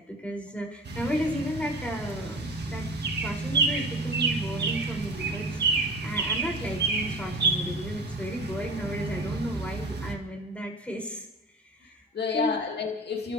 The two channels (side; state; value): both; normal; correlation 0.35